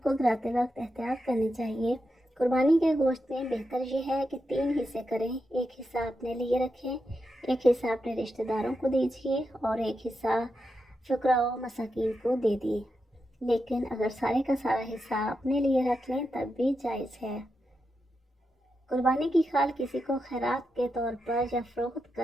کو گراتے وقت احتیاط کرنی چاہیے۔ قربانی کے گوشت میں بہتر یہ ہے کہ 3 حصے کریں، ایک حصہ اپنے لیے رکھیں، ایک حصہ اپنے رشتہ داروں کو دیجیے اور ایک حصہ فقراء و مساکین کو دے دیے۔ لیکن اگر سارے کا سارا حصہ اپنے لیے رکھ لیں تب بھی جائز ہے۔ قربانی کی کھال کسی کو خیرات کے طور پر یا فروخت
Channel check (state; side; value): normal; both; correlation 0.87